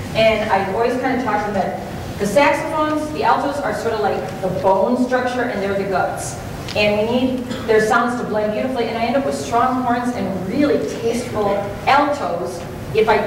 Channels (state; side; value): identical; both; correlation 1.00